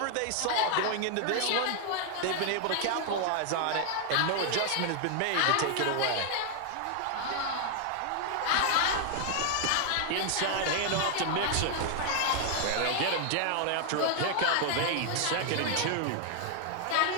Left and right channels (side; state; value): both; different; correlation 0.00